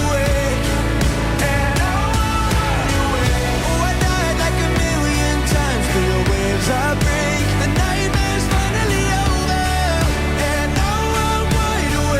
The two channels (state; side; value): identical; both; correlation 1.00